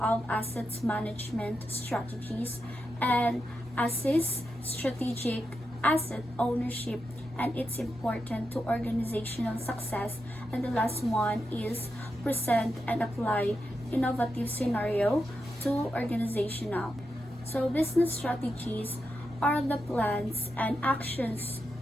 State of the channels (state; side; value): normal; both; correlation 0.87